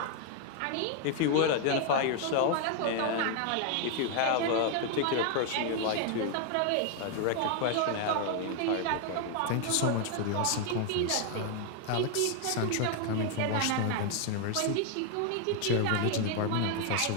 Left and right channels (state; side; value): different; both; correlation 0.00